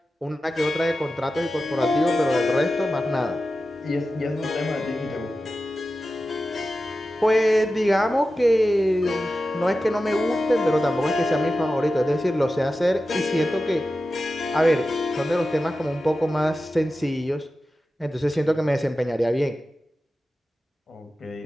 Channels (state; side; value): normal; both; correlation 0.93